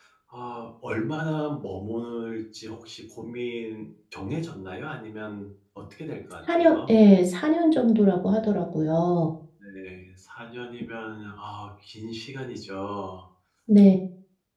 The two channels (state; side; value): identical; both; correlation 1.00